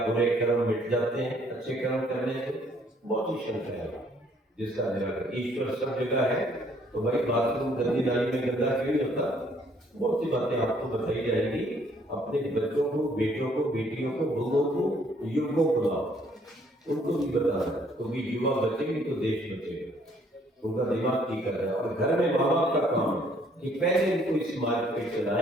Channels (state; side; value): normal; both; correlation 0.64